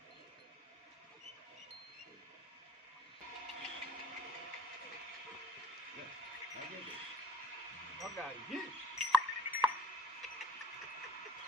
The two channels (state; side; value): normal; both; correlation 0.58